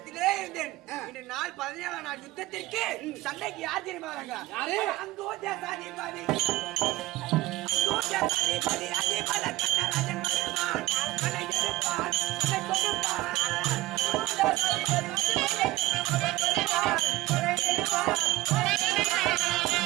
இருந்தேன். இன்று நாள் 17 நாள் யுத்தத்திற்கு சண்டைக்கு யார் தெரியுமா வராங்க? யாரு? அங்கோஜாதிபதி அதிபல கண்ணராஜன் வருவான். கண்ணை எடுப்பான், கண்ணை கொடுப்பான்.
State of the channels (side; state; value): left; quieter; 18.4 dB